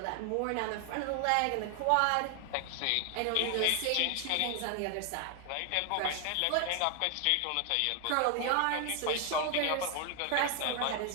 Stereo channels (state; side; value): different; both; correlation 0.00